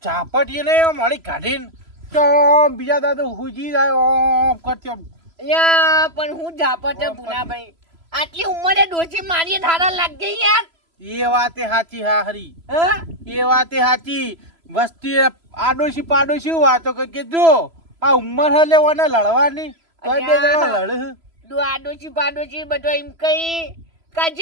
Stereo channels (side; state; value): left; late; 3.0 ms